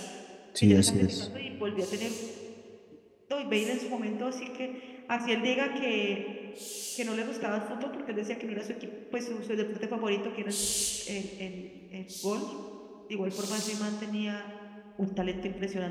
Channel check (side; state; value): both; identical; correlation 1.00